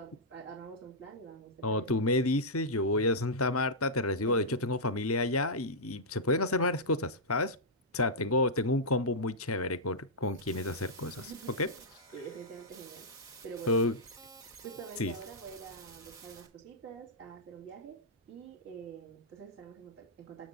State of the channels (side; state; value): both; normal; correlation -0.10